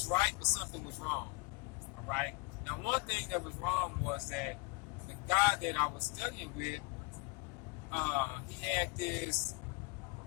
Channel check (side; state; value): right; quieter; 26.2 dB